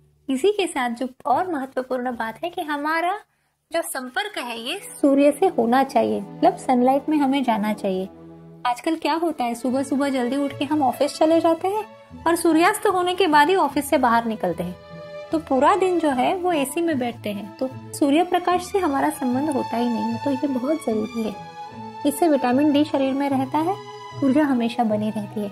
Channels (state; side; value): identical; both; correlation 1.00